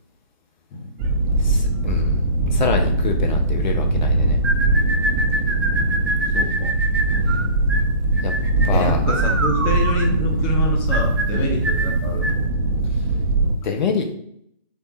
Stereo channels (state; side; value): inverted; both; correlation -0.39